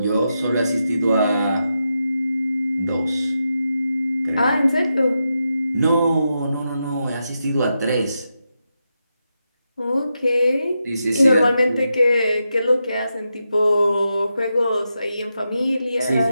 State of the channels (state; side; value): inverted; both; correlation -0.87